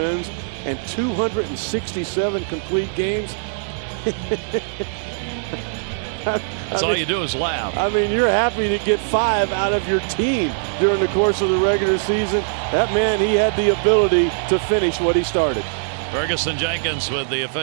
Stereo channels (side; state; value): left; silent; digital silence